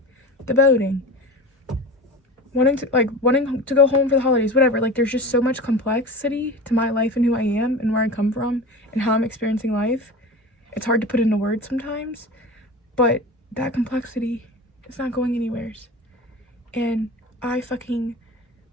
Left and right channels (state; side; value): normal; both; correlation 0.32